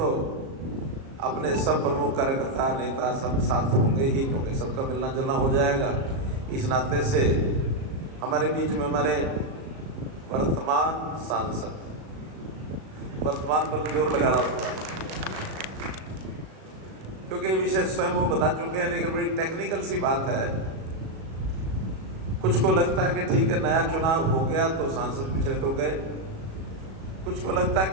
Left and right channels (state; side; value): late; left; 37 ms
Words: अपने सब प्रमुख कार्यकर्ता नेता सब साथ होंगे ही, क्योंकि सबका मिलना जुलना हो जाएगा। इस नाते से हमारे बीच में हमारे वर्तमान सांसद, वर्तमान पर जोर लगा रहा होता है क्योंकि विषय स्वयं वो बता चुके हैं, लेकिन बड़ी टेक्निकल सी बात है। कुछ को लगता है कि ठीक है नया चुनाव हो गया तो सांसद पिछले तो गए, कुछ को लगता है